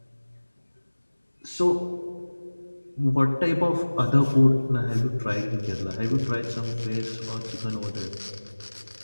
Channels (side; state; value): both; inverted; correlation -1.00